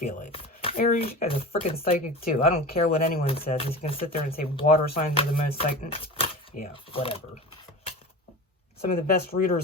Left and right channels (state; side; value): normal; both; correlation 0.31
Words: it. Aries, you guys are freaking psychic too. I don't care what anyone says. You can sit there and say water signs are the most psychic. Yeah, whatever. Some of the best